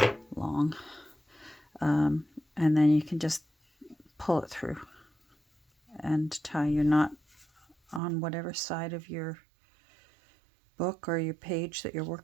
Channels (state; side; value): drops out; left; at 8.0 s